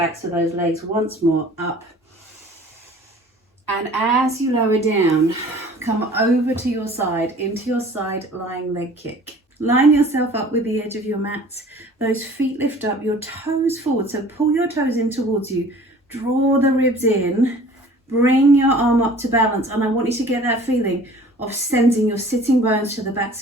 of those legs. Once more, up. And as you lower down, come over to your side, into your side lying leg kick. Line yourself up with the edge of your mat. Those feet lift up, your toes forward. So pull your toes in towards you. Draw the ribs in. Bring your arm up to balance. And I want you to get that feeling of sending your sitting bones to the backs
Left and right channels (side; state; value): both; normal; correlation 0.48